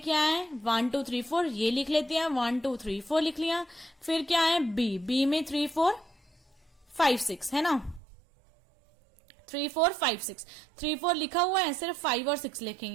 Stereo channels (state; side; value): drops out; left; at 8.0 s